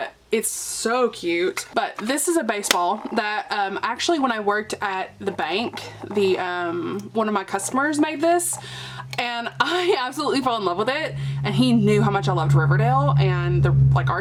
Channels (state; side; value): identical; both; correlation 1.00